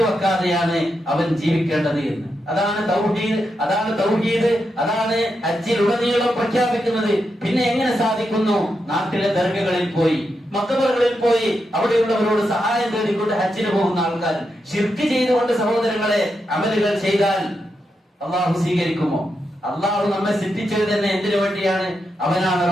വെക്കാതെയാണ് അവൻ ജീവിക്കേണ്ടത് എന്ന്. അതാണ് തൗഹീദ്, അതാണ് തൗഹീദ്, അതാണ് ഹജ്ജിലുടനീളം പ്രഖ്യാപിക്കുന്നത്. പിന്നെ എങ്ങനെ സാധിക്കുന്നു? നാട്ടിലെ ദർഗകളിൽ പോയി, മക്ബറുകളിൽ പോയി അവിടെയുള്ളവരോട് സഹായം തേടിക്കൊണ്ട് ഹജ്ജിന് പോകുന്ന ആൾക്കാർ ശിർക്ക് ചെയ്തുകൊണ്ട് സഹോദരങ്ങളെ അമലുകൾ ചെയ്താൽ അള്ളാഹു സ്വീകരിക്കുമോ? അള്ളാഹു നമ്മെ സൃഷ്ടിച്ചത് തന്നെ എന്തിനു വേണ്ടിയാണ്? അവനാണ്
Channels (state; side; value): normal; both; correlation 0.85